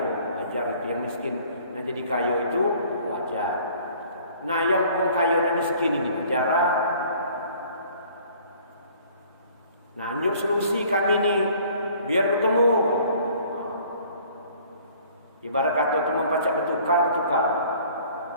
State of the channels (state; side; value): inverted; both; correlation -0.54